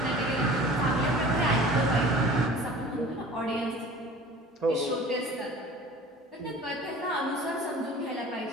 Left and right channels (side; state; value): both; normal; correlation 0.43